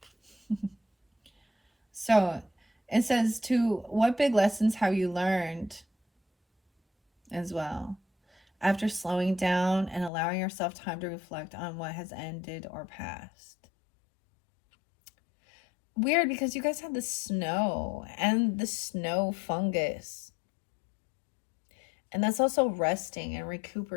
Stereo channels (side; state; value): right; drops out; at 10.1 s